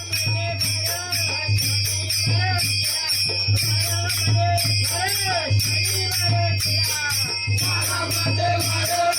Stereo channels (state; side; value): identical; both; correlation 1.00